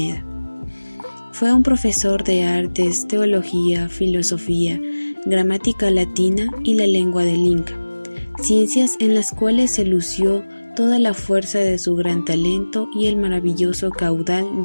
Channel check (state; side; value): inverted; both; correlation -1.00